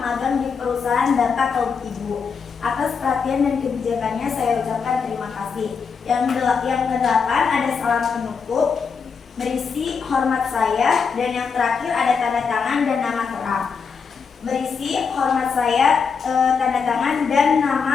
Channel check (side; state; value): right; quieter; 5.8 dB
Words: magang di perusahaan Bapak atau Ibu. Atas perhatian dan kebijakannya saya ucapkan terima kasih. Yang kedelapan ada salam penutup berisi hormat saya dan yang terakhir ada tanda tangan dan nama terang. Berisi hormat saya, tanda tangan dan